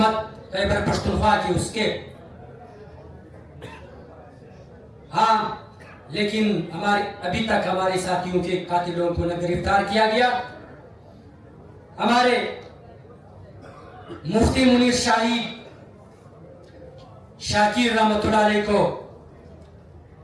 खैबर पख्तूनख्वा की उसके। हाँ, लेकिन अभी तक हमारे साथियों के कातिलों को न गिरफ्तार किया गया। हमारे मुफ्ती मुनीर शाही शाकिर रहमतुल्लाह अलैह को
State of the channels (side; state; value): both; identical; correlation 1.00